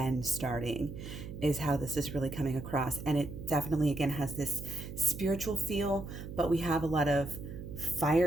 starting is how this is really coming across. And it definitely, again, has this spiritual feel, but we have a lot of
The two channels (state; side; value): noise; right; hum, 10 dB below the sound